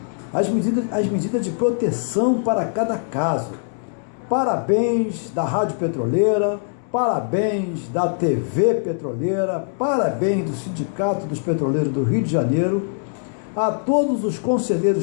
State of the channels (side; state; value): right; silent; 64 dB below the other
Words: as medidas de proteção para cada caso. Parabéns da Rádio Petroleira, parabéns da TV Petroleira, parabéns do Sindicato dos Petroleiros do Rio de Janeiro, a todos os